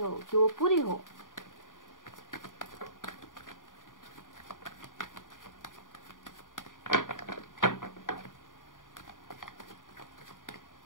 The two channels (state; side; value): late; right; 0.89 ms